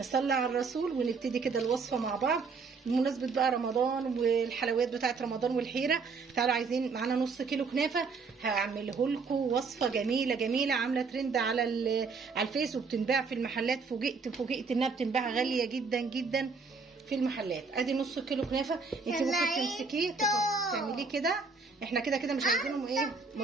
على الرسول ونبتدي كده الوصفه مع بعض بمناسبه بقى رمضان والحلويات بتاعه رمضان والحيره. تعالوا عايزين معانا نص كيلو كنافه، هعمله لكم وصفه جميله جميله عامله ترند على الفيس وبتنباع في المحلات. فوجئت انها بتنباع غاليه جدا جدا في المحلات. ادي نص كيلو كنافه، انت ممكن تمسكيه تعمليه كده. احنا كده مش عايزينهم ايه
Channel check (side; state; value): left; quieter; 4.7 dB